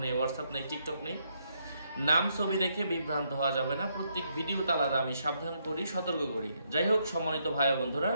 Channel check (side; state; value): both; inverted; correlation -0.76